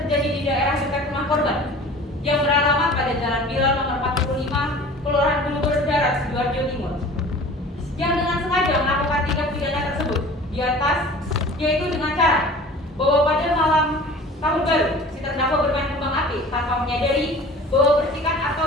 di daerah dekat rumah korban yang beralamat pada Jalan Bilal nomor 45, Kelurahan Bulugur Darat, Sidoarjo Timur, yang dengan sengaja melakukan tindak pidana tersebut di atas, yaitu dengan cara bahwa pada malam tahun baru si terdakwa bermain kembang api tanpa menyadari bahwa percikan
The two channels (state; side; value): normal; both; correlation 0.43